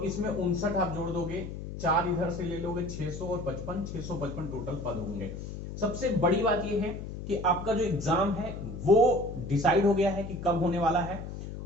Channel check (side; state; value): left; noise; hum, 8 dB below the sound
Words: इसमें 59 आप जोड़ दोगे, 4 इधर से ले लोगे, 600 और 55, 655 टोटल पद होंगे। सबसे बड़ी बात यह है कि आपका जो एग्जाम है वो डिसाइड हो गया है कि कब होने वाला है।